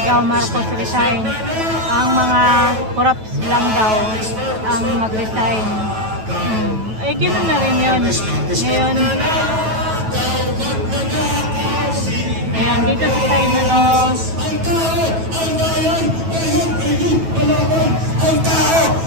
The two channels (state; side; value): late; left; 9.2 ms